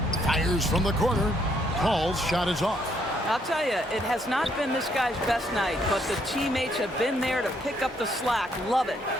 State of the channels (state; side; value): normal; both; correlation 0.71